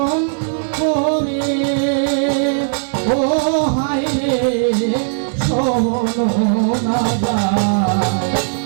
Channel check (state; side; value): silent; left; digital silence